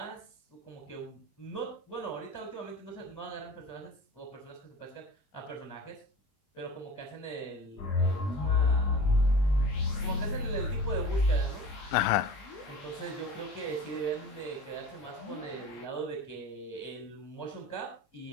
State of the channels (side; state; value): right; late; 20 ms